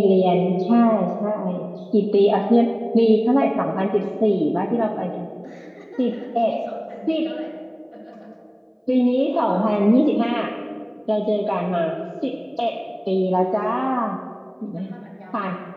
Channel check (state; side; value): identical; both; correlation 1.00